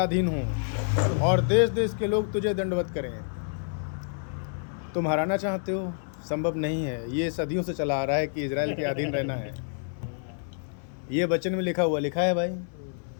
हों और देश देश के लोग तुझे दंडवत करें। तुम हराना चाहते हो, संभव नहीं है। ये सदियों से चला आ रहा है कि इज़राइल के अधीन रहना है। ये वचन में लिखा है भाई।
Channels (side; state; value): right; silent; 59 dB below the other